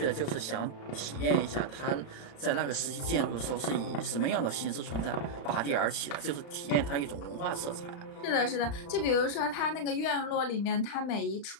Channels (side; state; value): right; late; 35 ms